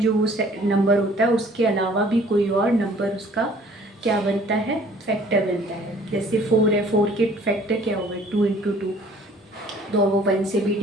नंबर होता है उसके अलावा भी कोई और नंबर उसका क्या बनता है, फैक्टर बनता है। जैसे 4 है, 4 के फैक्टर क्या होगा 2 इंटू 2, तो वो 1 से भी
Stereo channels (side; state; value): both; normal; correlation 0.55